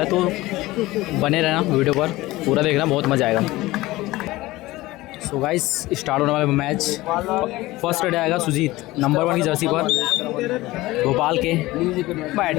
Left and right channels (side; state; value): right; quieter; 18.7 dB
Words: है। तो बने रहना वीडियो पर, पूरा देखना, बहुत मजा आएगा। सो गाइस स्टार्ट होने वाला मैच। फर्स्ट रेड आएगा सुजीत नंबर 1 की जर्सी पर भोपाल के बैट